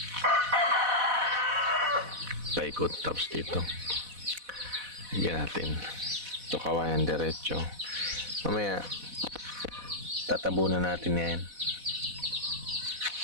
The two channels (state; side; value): late; left; 4.1 ms